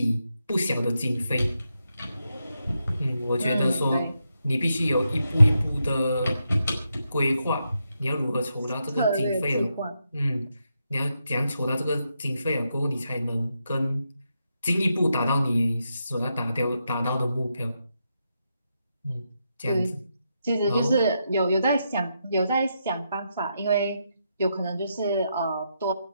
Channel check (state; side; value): inverted; both; correlation -0.83